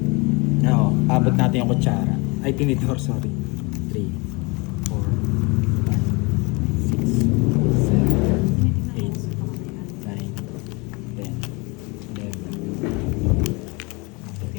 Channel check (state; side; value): quieter; right; 27.9 dB